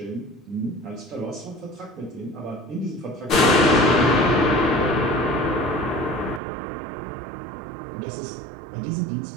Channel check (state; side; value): drops out; left; at 6.4 s